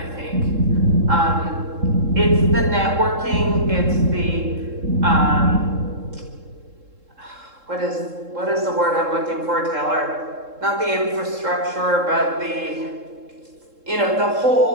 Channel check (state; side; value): late; left; 3.7 ms